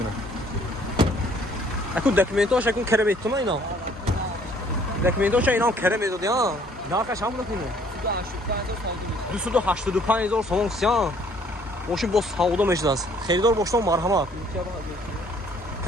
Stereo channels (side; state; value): both; normal; correlation 0.60